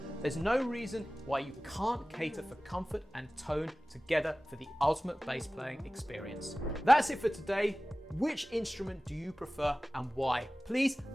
There's no reason why you can't cater for comfort and tone together for the ultimate bass playing experience. That's it for today. Which instrument do you prefer and why? Please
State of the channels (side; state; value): both; normal; correlation 0.97